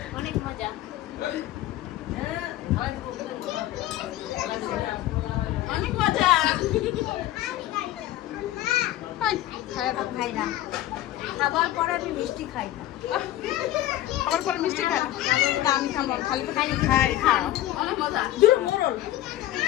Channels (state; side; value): quieter; right; 14.2 dB